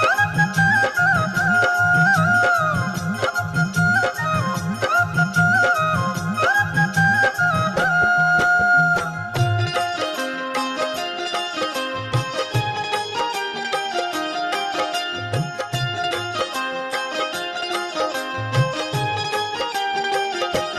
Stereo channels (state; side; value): identical; both; correlation 1.00